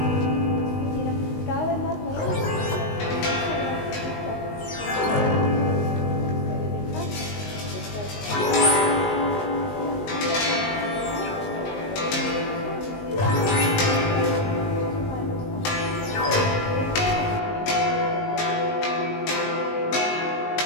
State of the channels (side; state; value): right; late; 19 ms